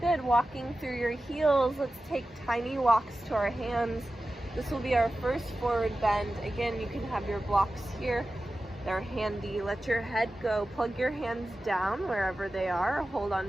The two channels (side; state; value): both; normal; correlation 0.94